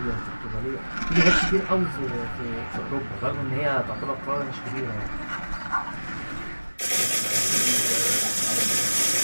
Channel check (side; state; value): both; inverted; correlation -1.00